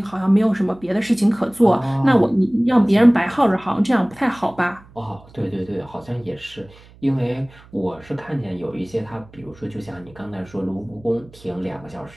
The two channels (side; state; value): right; noise; hum, 24 dB below the sound